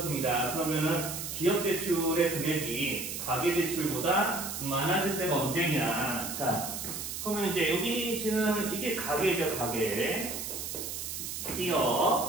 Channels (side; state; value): right; noise; hiss, 6 dB below the sound